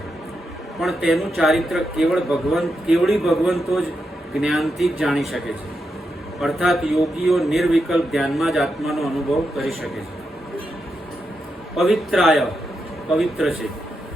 પણ તેનું ચારિત્ર કેવળી ભગવંતો જ જ્ઞાનથી જ જાણી શકે છે. અર્થાત યોગીઓ નિર્વિકલ્પ ધ્યાનમાં જ આત્માનો અનુભવ કરી શકે છે. પવિત્રાય, પવિત્ર છે.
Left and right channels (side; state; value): both; normal; correlation 0.85